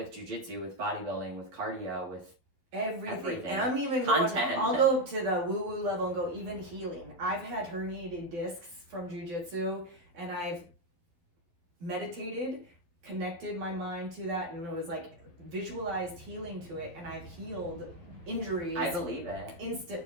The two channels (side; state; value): left; late; 12 ms